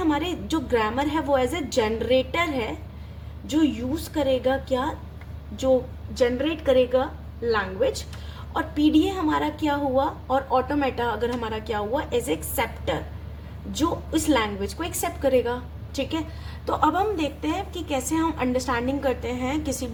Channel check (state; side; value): identical; both; correlation 1.00